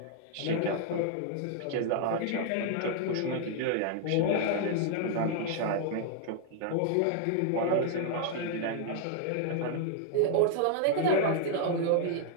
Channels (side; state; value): both; different; correlation 0.00